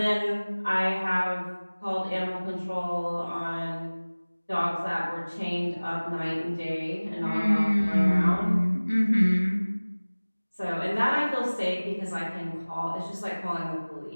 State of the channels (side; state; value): both; inverted; correlation -1.00